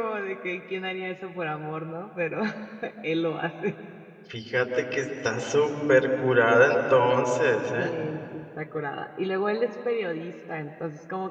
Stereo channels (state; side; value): identical; both; correlation 1.00